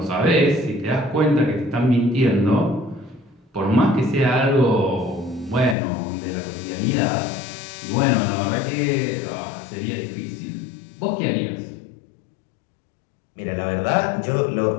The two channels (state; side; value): drops out; right; at 5.8 s